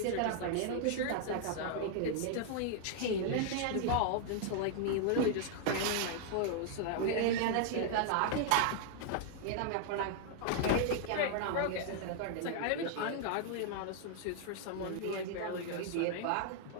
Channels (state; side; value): different; both; correlation 0.00